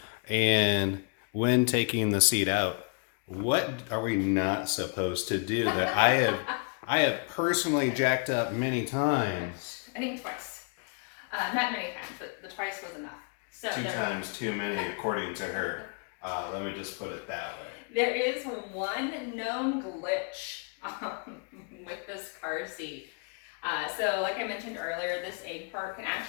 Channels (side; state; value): right; quieter; 38.2 dB